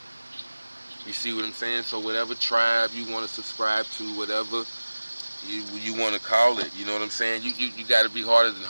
You see what I'm saying? So whatever tribe you want to subscribe to, whatever you want to call it, you know what I'm saying? You got to be harder than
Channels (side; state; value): both; inverted; correlation -1.00